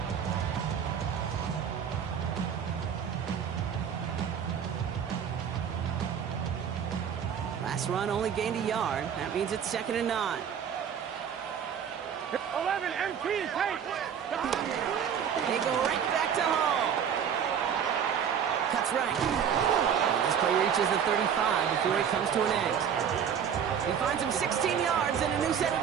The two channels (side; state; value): left; quieter; 8.0 dB